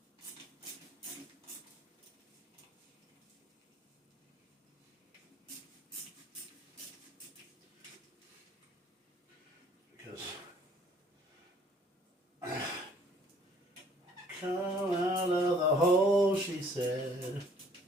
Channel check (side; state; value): both; normal; correlation 0.57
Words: Because come out of the hole, she said.